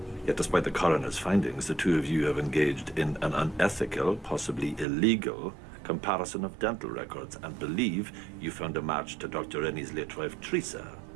Yet despite the coroner's findings, the two of you have engaged in an unethical, possibly illegal, comparison of dental records and believe you found a match to Dr. Rennie's late wife, Teresa.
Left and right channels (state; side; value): drops out; left; at 4.9 s